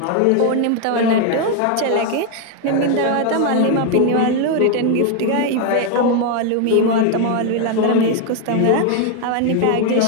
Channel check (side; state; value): both; different; correlation 0.01